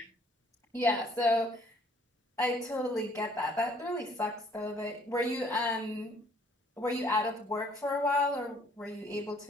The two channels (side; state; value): both; normal; correlation 0.61